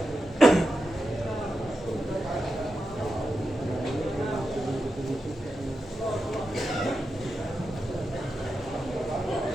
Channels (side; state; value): both; normal; correlation 0.88